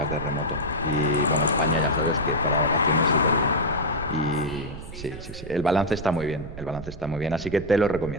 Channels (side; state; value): right; noise; rumble, 13 dB below the sound